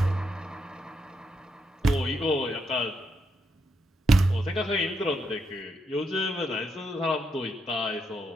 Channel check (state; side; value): normal; both; correlation 0.80